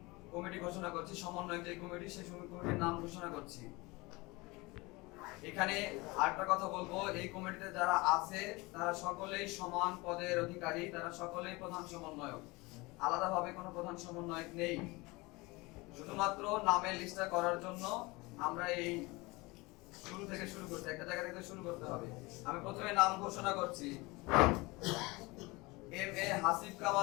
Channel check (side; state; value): right; quieter; 23.8 dB